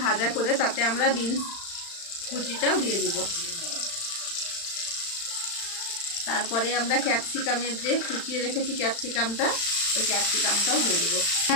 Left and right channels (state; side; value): late; right; 35 ms